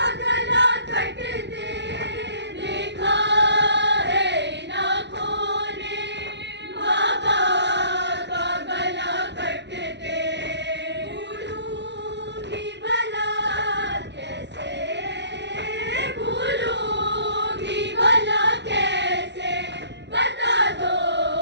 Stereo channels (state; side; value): late; left; 0.51 ms